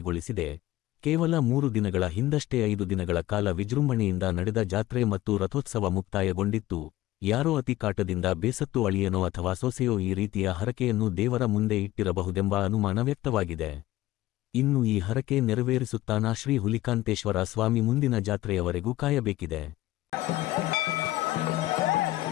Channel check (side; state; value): right; quieter; 16.3 dB